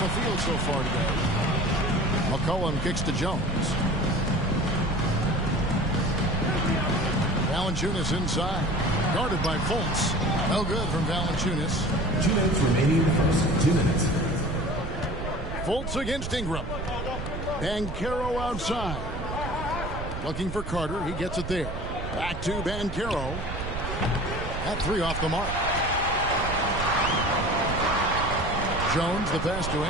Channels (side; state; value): right; noise; rumble, 6 dB below the sound